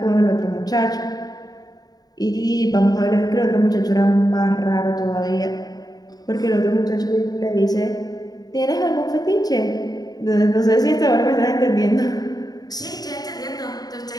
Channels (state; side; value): late; right; 0.19 ms